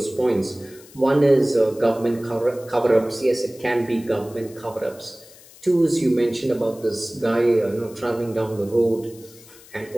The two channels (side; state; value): left; noise; hiss, 22 dB below the sound